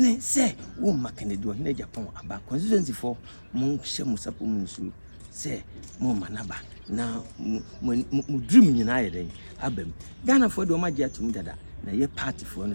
se wo Hon.Kennedy OHENE Agyapong aba constituency for mo hye mo sapo mo nsu se mo manaba na mo dream nyina ye den abam Ghana for do ma gye atum dada na ye party for no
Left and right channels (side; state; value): both; inverted; correlation -1.00